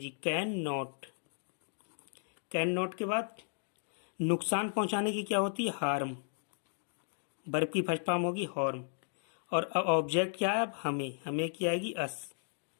कैन नॉट। कैन नॉट के बाद नुकसान पहुंचाने की क्या होती है हार्म, वर्ब की फर्स्ट फॉर्म होगी हार्म। और ऑब्जेक्ट क्या है अब हमें की आएगी अस।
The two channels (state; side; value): silent; right; digital silence